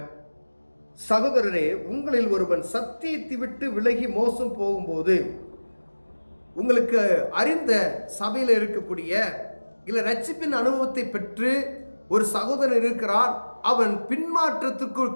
சகோதரரே, உங்களில் ஒருவன் சத்தியத்தை விட்டு விலகி மோசம் போகும்போது, உங்களுக்கு அறிந்த சபையில் இருக்கக்கூடிய இல்ல ரட்சிப்பின் அனுபவத்தை பெற்று ஒரு சகோதரன் இருக்கிறான், அவன் பின்மாற்றத்திற்குள்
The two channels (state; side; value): inverted; both; correlation -1.00